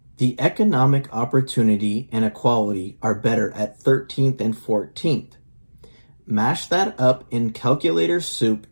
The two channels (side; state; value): both; inverted; correlation -1.00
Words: The economic opportunity and equality are better at 13th and 14th. Mash that up in calculator soup